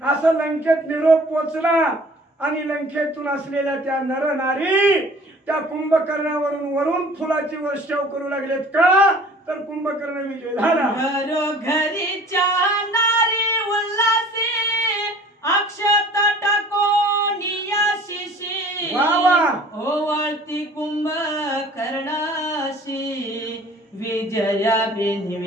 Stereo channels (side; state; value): both; normal; correlation 0.49